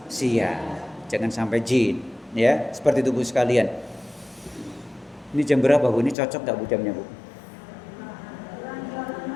jangan sampai jin ya, seperti itu Bu sekalian. Ini jam berapa Bu? Ini cocok gak Bu jamnya Bu?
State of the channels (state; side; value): drops out; right; at 6.2 s